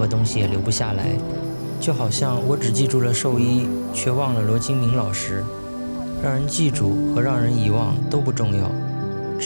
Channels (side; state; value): both; inverted; correlation -1.00